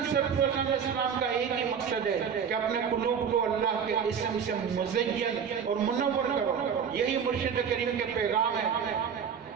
سرفروشان اسلام کا ایک ہی مقصد ہے کہ اپنے قلوب کو اللہ کے اسم سے مزین اور منور کرو، یہی مرشد کریم کے پیغام ہے۔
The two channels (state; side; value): quieter; left; 7.1 dB